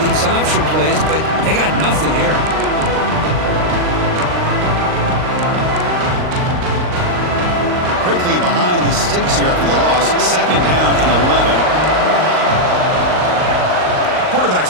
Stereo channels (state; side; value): late; left; 39 ms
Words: these option plays, but they got nothing here. Quickly behind the sticks here after the loss. 2nd down and 11.